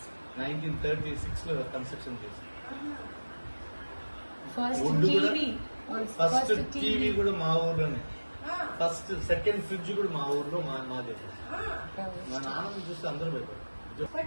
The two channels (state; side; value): inverted; both; correlation -1.00